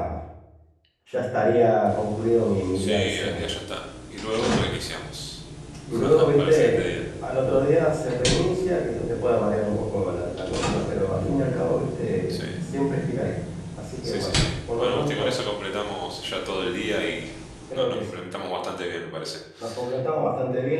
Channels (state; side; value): identical; both; correlation 1.00